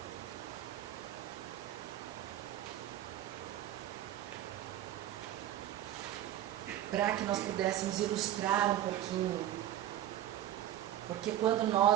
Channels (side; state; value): left; quieter; 12.4 dB